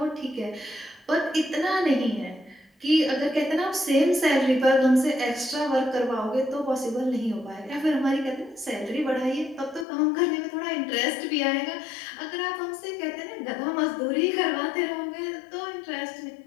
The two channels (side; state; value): right; drops out; at 9.9 s